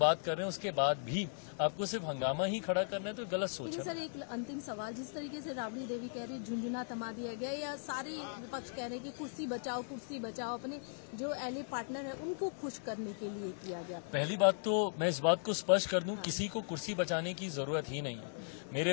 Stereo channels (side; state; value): right; silent; digital silence